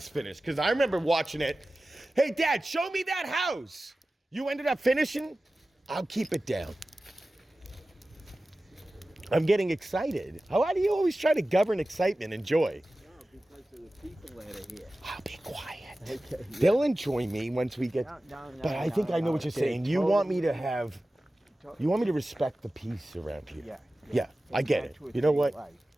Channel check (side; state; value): both; normal; correlation 0.96